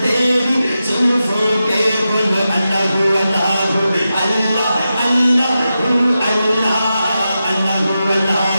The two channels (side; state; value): both; inverted; correlation -0.90